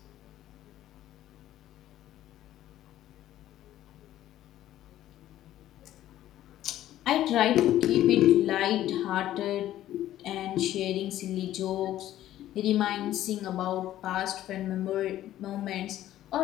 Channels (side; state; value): right; quieter; 13.2 dB